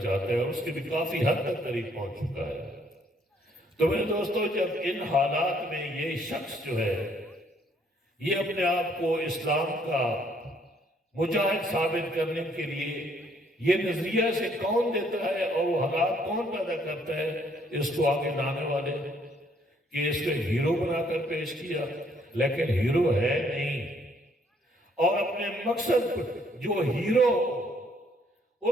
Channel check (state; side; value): normal; both; correlation 0.66